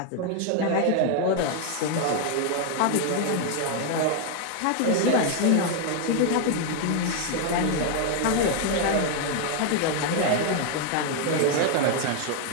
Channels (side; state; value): both; different; correlation 0.01